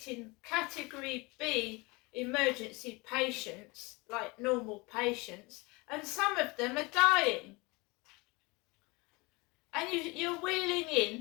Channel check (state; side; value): quieter; right; 25.7 dB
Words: category B emergency patients like normal patients, and some of them are dying. And you're wheeling